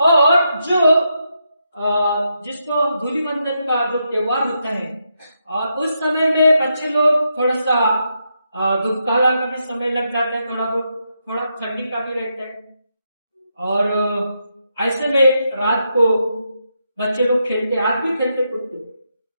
जो जिसको धूलिवंदन का जो त्योहार होता है, और उस समय में बच्चे लोग थोड़ा सा धूपकाला का भी समय लग जाता है, थोड़ा ठंडी का भी रहता है। और ऐसे में रात को बच्चे लोग खेलते, आज भी खेलते कूदते।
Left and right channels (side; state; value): both; inverted; correlation -0.82